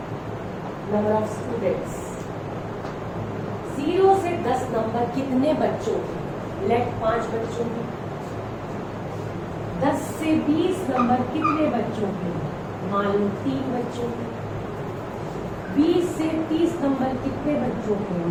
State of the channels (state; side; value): identical; both; correlation 1.00